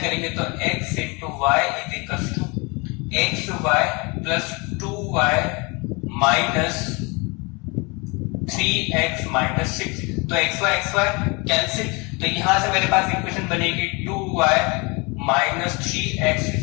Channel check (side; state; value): right; quieter; 28.7 dB